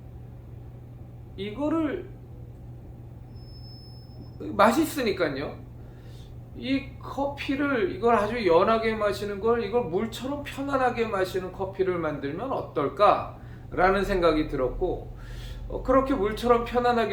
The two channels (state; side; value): identical; both; correlation 1.00